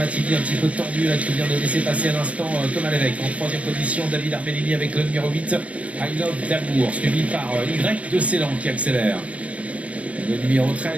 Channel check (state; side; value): late; left; 0.066 ms